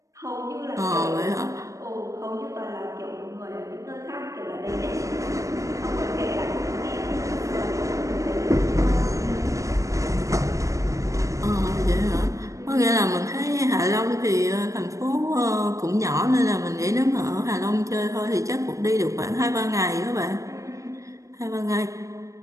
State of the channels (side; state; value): left; late; 0.15 ms